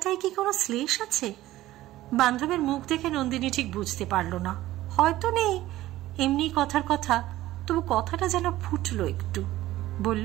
কি কোনো শ্লেষ আছে? বান্ধবের মুখ দেখে নন্দিনী ঠিক বুঝতে পারল না, হয়তো নেই, এমনি কথার কথা, তবু কথাটা যেন ফুটলো একটু।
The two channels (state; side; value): quieter; left; 15.6 dB